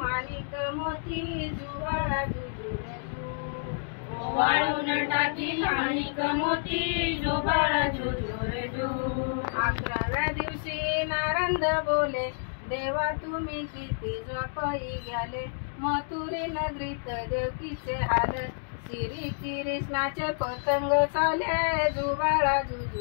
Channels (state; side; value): silent; right; digital silence